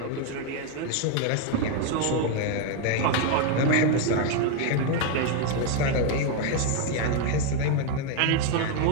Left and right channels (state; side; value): different; both; correlation 0.01